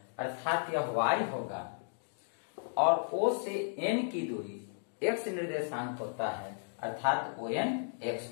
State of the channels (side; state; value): right; silent; digital silence